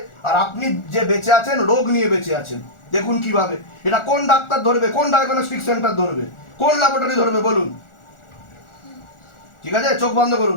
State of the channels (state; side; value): late; right; 1.4 ms